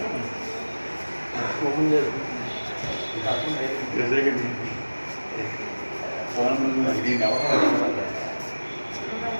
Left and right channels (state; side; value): inverted; both; correlation -1.00